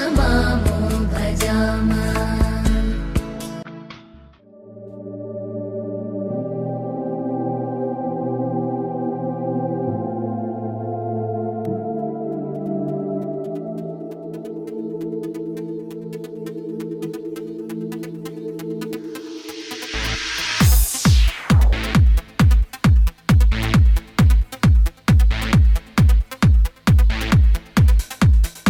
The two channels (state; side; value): identical; both; correlation 1.00